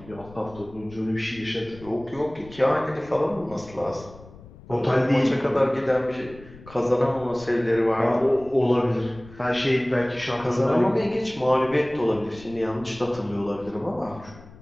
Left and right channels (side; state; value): left; noise; rumble, 20 dB below the sound